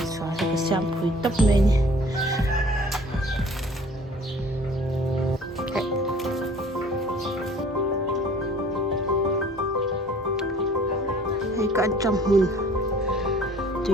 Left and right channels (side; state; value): both; normal; correlation 0.51